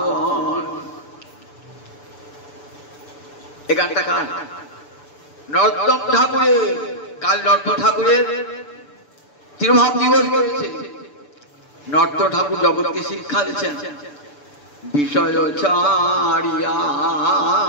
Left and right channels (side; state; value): right; late; 6.9 ms